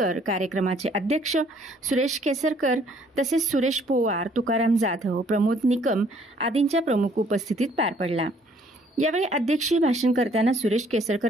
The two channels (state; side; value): normal; both; correlation 0.62